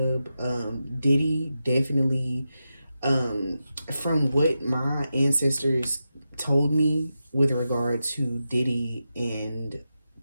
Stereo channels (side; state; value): both; inverted; correlation -0.90